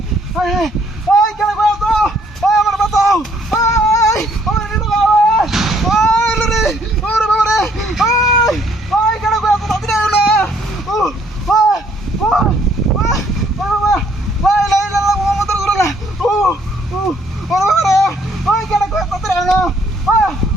এই ওই কেডা কই আছো ওই আমার বাঁচাও ওই ওরে নিলো ওই রে ওরে বাবা রে ওই ওই কেডা কই আছো তাড়াতাড়ি আয় না ও ওই ওই ওই বাবা লা ইলাহা ইল্লাল্লাহ মুহাম্মাদুর রাসূলুল্লাহ ও ও ওরে বাবা রে ওই কেডা কই আছো তাড়াতাড়ি আয় না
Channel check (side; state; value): both; normal; correlation 0.64